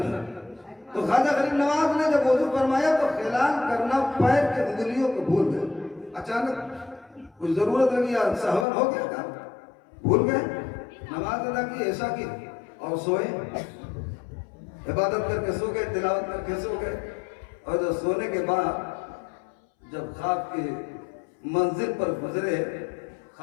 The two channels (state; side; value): drops out; right; at 8.7 s